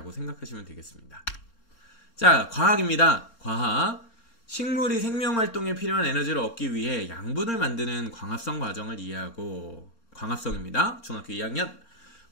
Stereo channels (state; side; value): late; right; 3.6 ms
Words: 생각하시면 되겠습니다. 자, 과학입니다. 과학. 식물이 생명활동에 필요한 에너지를 얻기 위해 양분을 만드는 광합성 과정을 이해하고, 광합성입니다. 중학교 2학년.